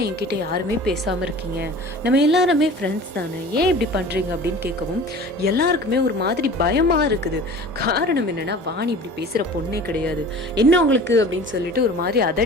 என்கிட்ட யாருமே பேசாம இருக்கீங்க, நம்ம எல்லாருமே ஃப்ரெண்ட்ஸ் தானே, ஏன் இப்படி பண்றீங்க அப்படின்னு கேட்கவும் எல்லாருக்குமே ஒரு மாதிரி பயமா இருக்குது. காரணம் என்னன்னா, வாணி இப்படி பேசுற பொண்ணே கிடையாது. என்ன உங்களுக்கு அப்படின்னு அப்படின்னு சொல்லிட்டு ஒரு மாதிரி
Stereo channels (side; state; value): both; normal; correlation 0.41